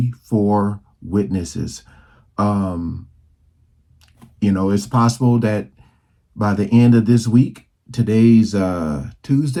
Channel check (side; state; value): both; identical; correlation 1.00